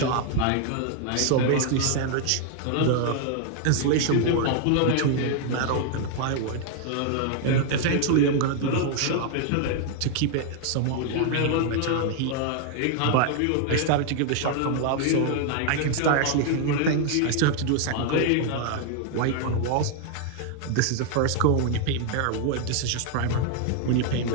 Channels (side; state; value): both; different; correlation 0.00